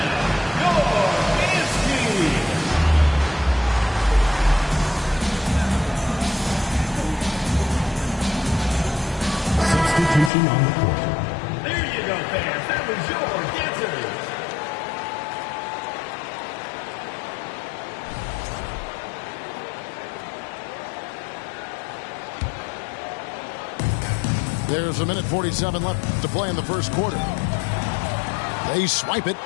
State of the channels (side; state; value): right; drops out; at 10.3 s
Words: your team. Substitution on the court. There you go, fans. That was your dancers. There's a minute 47 left to play in the first quarter. They swipe it.